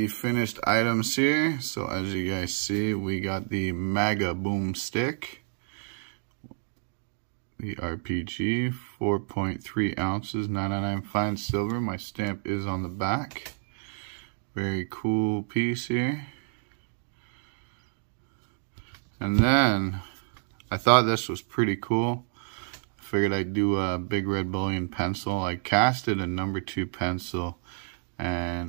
finished items here. So as you guys see, we got the Maga Boom Stick. The RPG, 4.3 ounces, 999 fine silver. My stamp is on the back. Very cool piece here. And then I thought this was pretty cool. I figured I'd do a big red bullion pencil. I casted a number 2 pencil,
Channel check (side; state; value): left; silent; digital silence